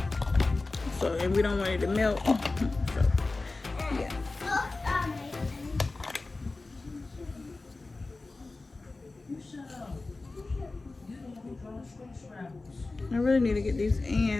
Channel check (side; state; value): right; quieter; 3.4 dB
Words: So, and we don't want it to melt. So, yeah. I really need to get these